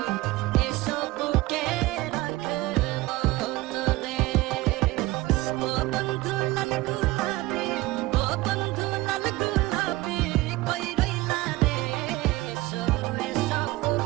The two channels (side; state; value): left; quieter; 19.3 dB